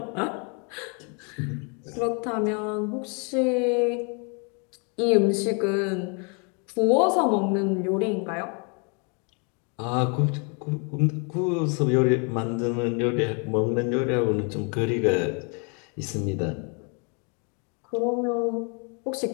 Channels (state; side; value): quieter; right; 36.2 dB